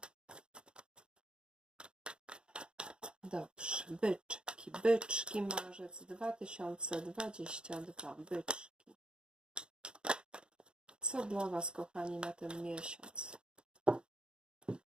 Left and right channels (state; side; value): late; left; 0.051 ms